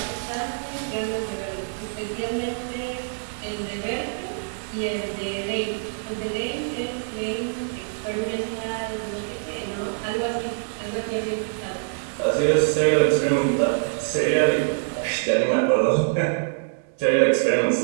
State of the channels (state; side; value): silent; left; digital silence